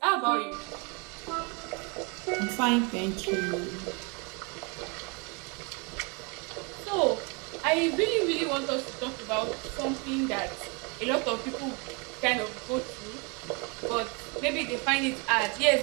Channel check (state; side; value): quieter; left; 31.8 dB